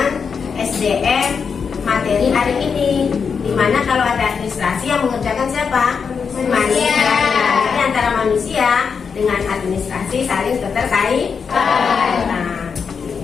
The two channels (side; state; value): right; quieter; 6.0 dB